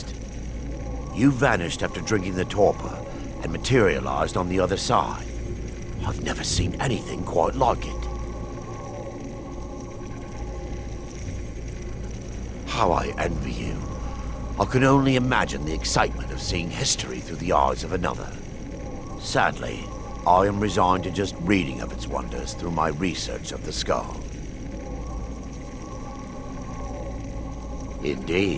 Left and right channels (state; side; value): identical; both; correlation 1.00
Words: You vanished after drinking the torpor and materialized on the other side. I've never seen anything quite like it. How I envy you. I can only imagine the excitement of seeing history through the eyes of another. Sadly, I am resigned to just reading of its wonders through my research of the skull.